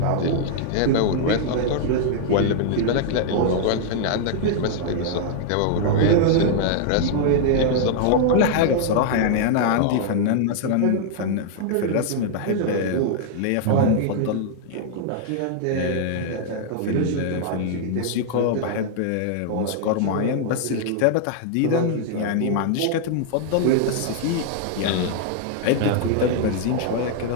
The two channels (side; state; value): both; different; correlation -0.01